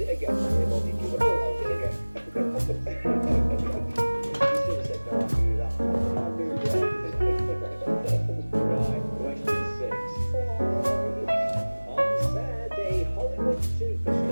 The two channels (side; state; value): both; inverted; correlation -1.00